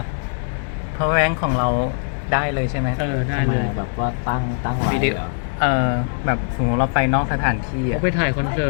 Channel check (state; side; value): silent; right; digital silence